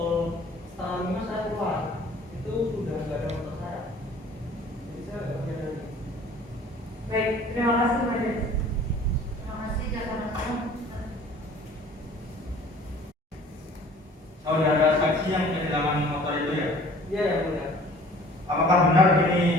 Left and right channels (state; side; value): normal; both; correlation 0.50